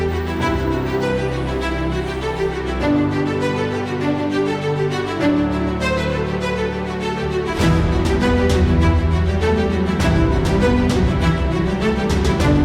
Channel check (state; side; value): identical; both; correlation 1.00